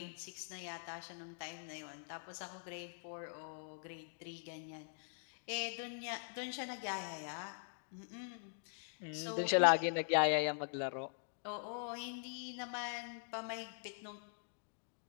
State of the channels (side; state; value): right; silent; digital silence